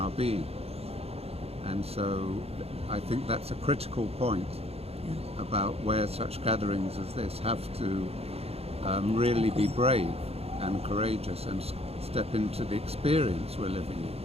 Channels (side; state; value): left; late; 0.29 ms